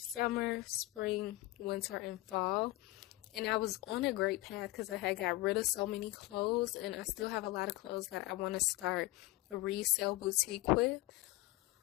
spring, winter, and fall. And I was on a great path because I had got rid of so many clothes, and I still have a lot of clothes that I want to start a resale boutique with.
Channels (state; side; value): quieter; right; 19.5 dB